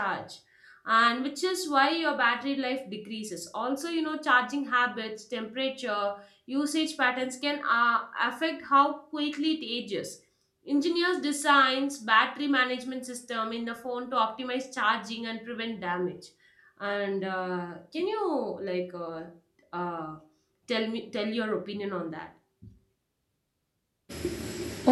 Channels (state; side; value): identical; both; correlation 1.00